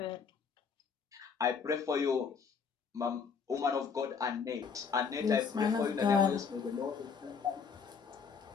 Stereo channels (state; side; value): quieter; right; 6.1 dB